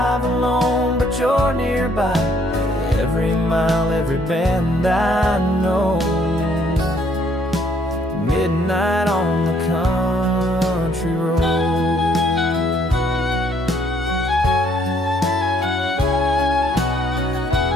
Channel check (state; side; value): normal; both; correlation 0.66